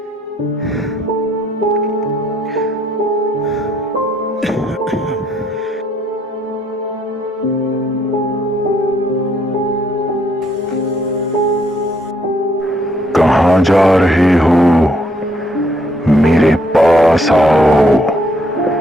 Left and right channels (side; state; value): both; normal; correlation 0.69